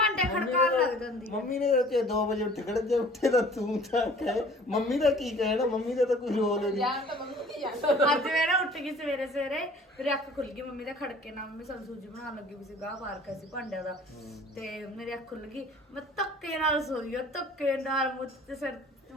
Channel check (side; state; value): both; normal; correlation 0.50